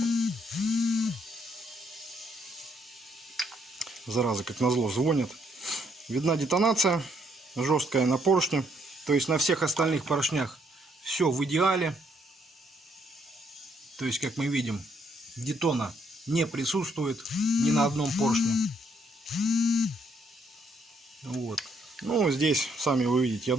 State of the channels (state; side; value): normal; both; correlation 0.71